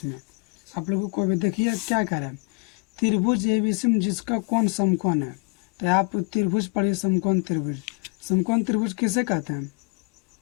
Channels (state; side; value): quieter; right; 33.5 dB